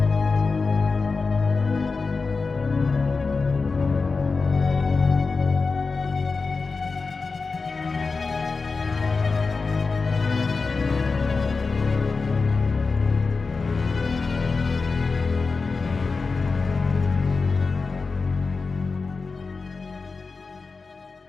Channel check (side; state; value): right; quieter; 4.3 dB